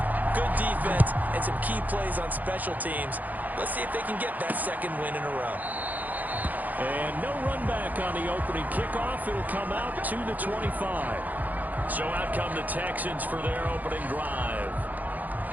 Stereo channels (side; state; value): left; late; 0.081 ms